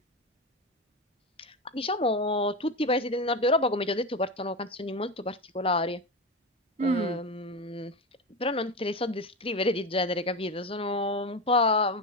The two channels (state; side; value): normal; both; correlation 0.19